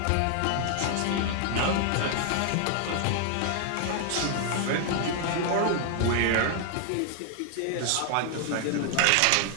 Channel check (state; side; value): different; both; correlation 0.00